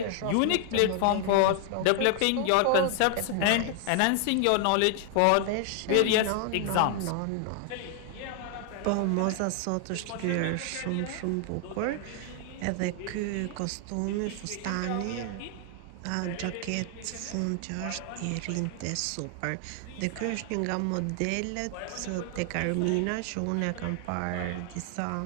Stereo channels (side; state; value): both; different; correlation 0.00